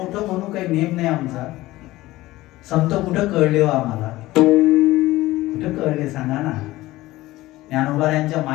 म्हणू काही नेम नाही आमचा. संत कुठं कळले हो आम्हाला? कुठं कळले सांगा ना? ज्ञानोबा यांच्या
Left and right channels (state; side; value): quieter; right; 17.7 dB